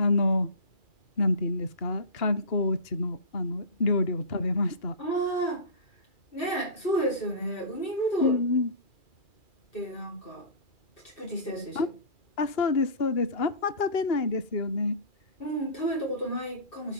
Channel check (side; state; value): right; late; 2.4 ms